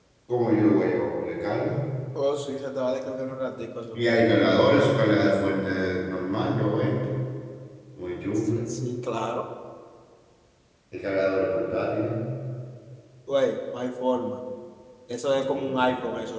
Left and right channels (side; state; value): both; identical; correlation 1.00